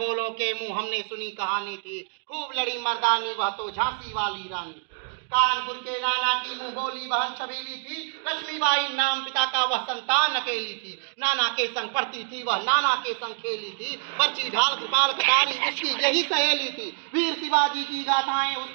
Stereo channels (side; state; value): left; silent; 61 dB below the other